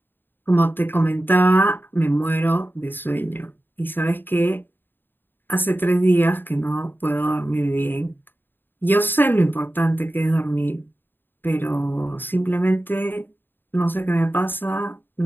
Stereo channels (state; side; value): late; right; 0.096 ms